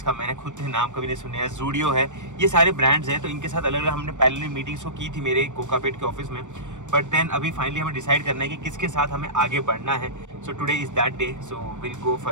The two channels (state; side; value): late; left; 0.85 ms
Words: मैंने खुद नाम कभी नहीं सुना है, जूडियो है, ये सारे ब्रांड्स हैं। तो इनके साथ अलग अलग हमने पहले मीटिंग्स को की थी मेरे कोकापेट के ऑफिस में। बट देन अभी फाइनली हमें डिसाइड करना है कि किसके साथ हमें आगे बढ़ना है। So today is that day, so will go for